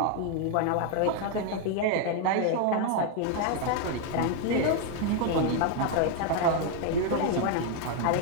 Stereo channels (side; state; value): both; different; correlation 0.01